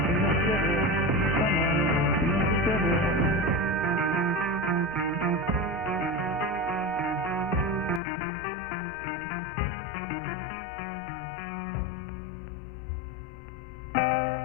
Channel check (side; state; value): right; drops out; at 8.0 s